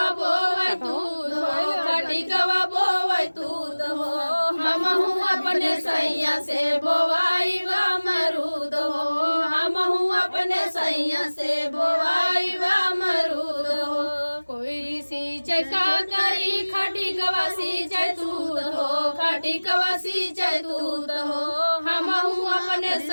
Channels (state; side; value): inverted; both; correlation -1.00